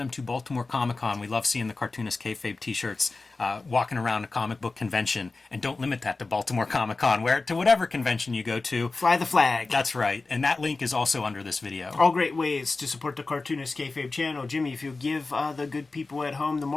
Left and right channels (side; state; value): right; quieter; 3.7 dB